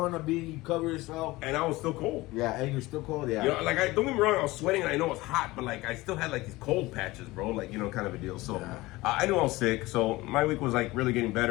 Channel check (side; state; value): right; quieter; 20.0 dB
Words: on a beanie, you cover yourself. And I was still cold. Yeah, and you're still cold. Yeah. You know, like, don't get me wrong, I was sweating and I know it's hot, but like, I still had like these cold patches, bro. Like, you know, kind of a deal. So, I knew I was sick. So, my week was like really getting